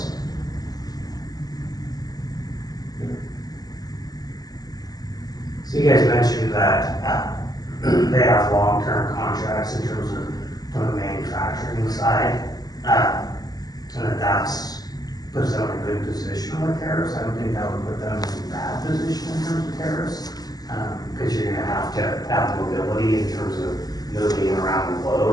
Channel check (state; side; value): late; right; 0.19 ms